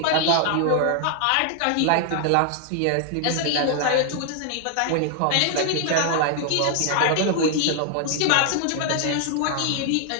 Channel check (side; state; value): both; different; correlation 0.00